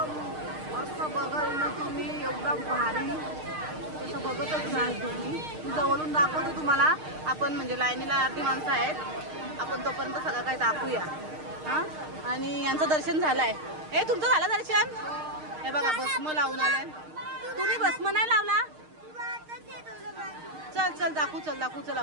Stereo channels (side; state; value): left; late; 6.5 ms